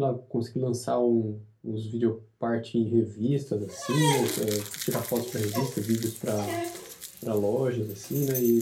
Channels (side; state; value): both; identical; correlation 1.00